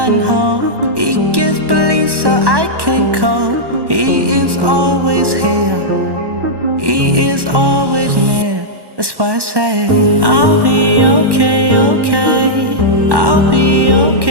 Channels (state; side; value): late; left; 1.1 ms